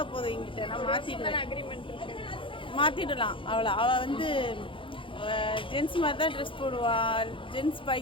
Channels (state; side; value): late; right; 0.25 ms